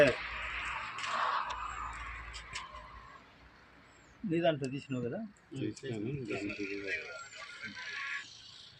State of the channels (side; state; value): both; identical; correlation 1.00